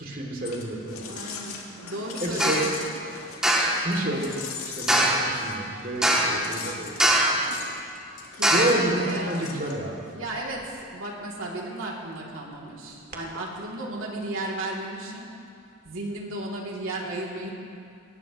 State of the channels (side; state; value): both; normal; correlation 0.36